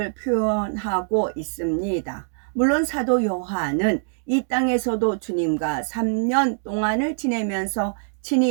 표현하고 있습니다. 물론 사도 요한은 이 땅에서도 주님과 3년 동안을 지내면서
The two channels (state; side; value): silent; left; 63 dB below the other